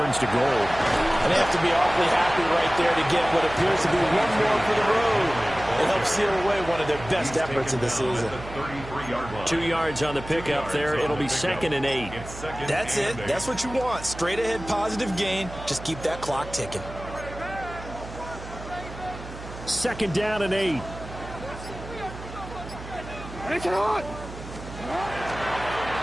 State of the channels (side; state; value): right; noise; hum, 12 dB below the sound